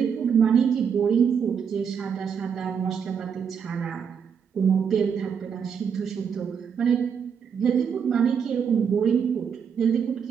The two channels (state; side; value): quieter; left; 7.0 dB